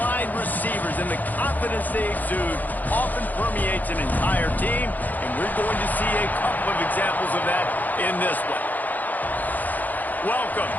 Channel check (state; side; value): late; right; 0.083 ms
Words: wide receivers and the confidence they exude often permeates an entire team, and we're going to see a couple of examples of that in this one. Welcome